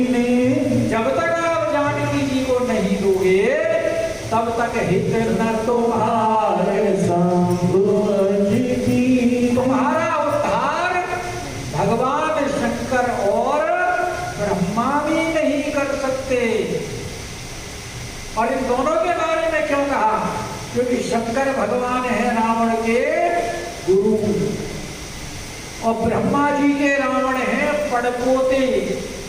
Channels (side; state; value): both; identical; correlation 1.00